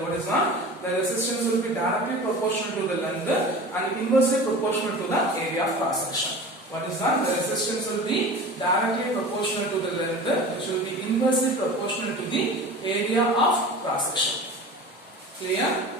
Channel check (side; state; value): both; normal; correlation 0.36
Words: What is that? The resistance will be directly proportional to the length and inversely proportional to the area of cross section. What is that? The resistance will be directly proportional to the length, which will be inversely proportional to the area of cross section. Clear?